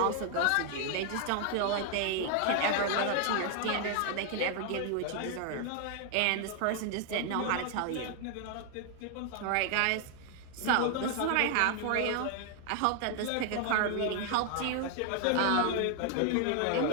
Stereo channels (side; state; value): both; different; correlation 0.00